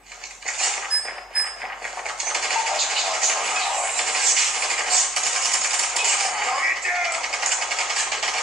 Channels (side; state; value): both; normal; correlation 0.61